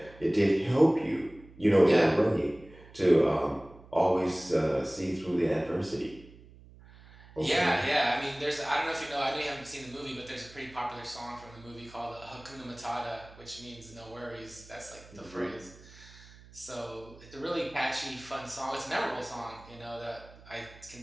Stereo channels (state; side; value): noise; right; hum, 21 dB below the sound